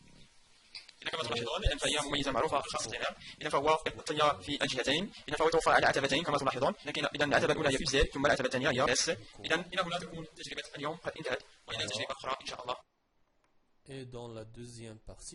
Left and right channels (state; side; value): identical; both; correlation 1.00